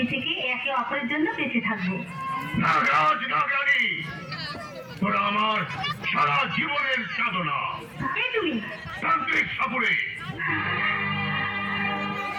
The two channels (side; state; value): both; identical; correlation 1.00